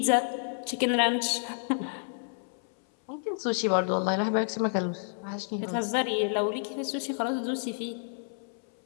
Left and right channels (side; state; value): right; silent; 58 dB below the other